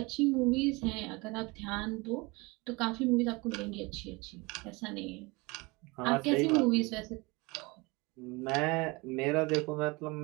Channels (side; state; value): left; quieter; 25.5 dB